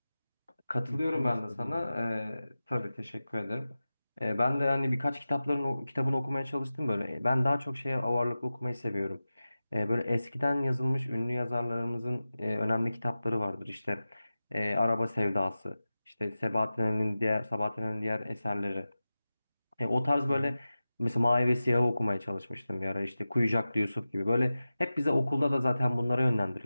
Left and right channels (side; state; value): both; inverted; correlation -0.95